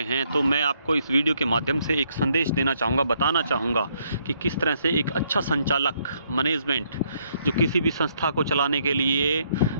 हैं। तो मैं आपको इस वीडियो के माध्यम से एक संदेश देना चाहूँगा, बताना चाहूँगा कि किस तरह से एक अच्छा संचालक मैनेजमेंट जो किसी भी संस्था को चलाने के लिए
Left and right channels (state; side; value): inverted; both; correlation -0.71